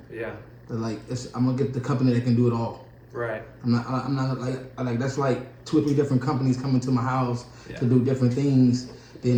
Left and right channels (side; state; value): both; identical; correlation 1.00